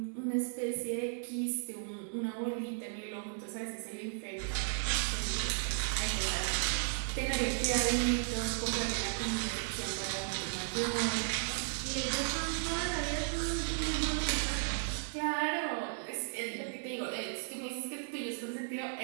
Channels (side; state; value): left; silent; digital silence